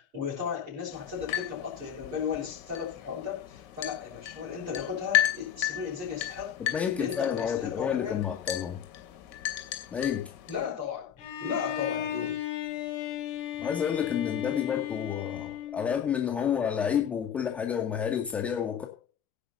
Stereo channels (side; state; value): right; quieter; 8.7 dB